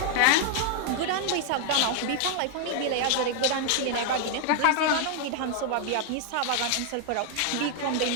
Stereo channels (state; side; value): different; both; correlation 0.00